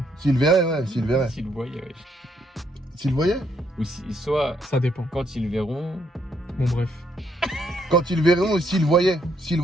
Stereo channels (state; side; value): normal; both; correlation 0.72